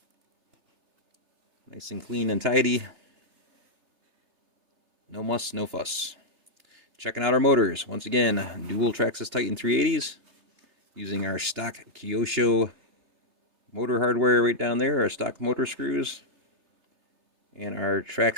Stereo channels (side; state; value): left; late; 3.3 ms